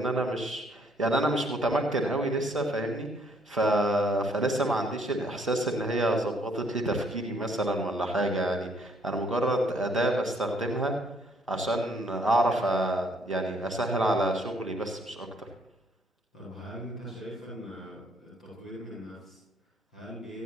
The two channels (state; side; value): normal; both; correlation 0.66